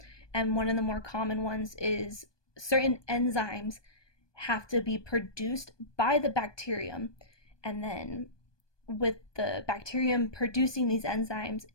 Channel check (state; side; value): late; right; 1.2 ms